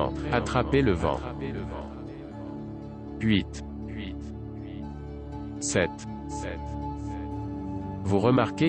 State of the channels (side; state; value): both; identical; correlation 1.00